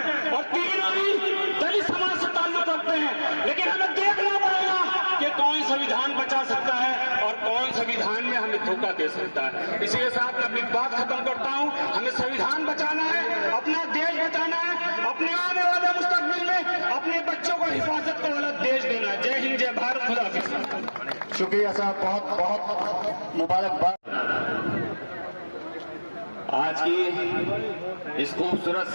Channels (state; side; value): inverted; both; correlation -1.00